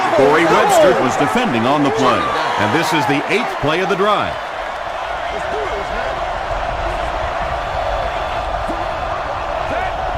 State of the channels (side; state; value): both; identical; correlation 1.00